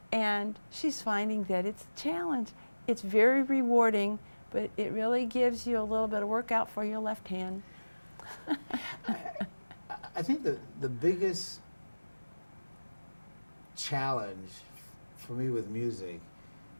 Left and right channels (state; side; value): inverted; both; correlation -1.00